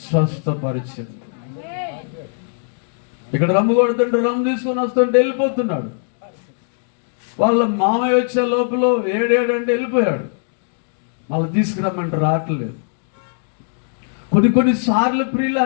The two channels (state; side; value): silent; right; digital silence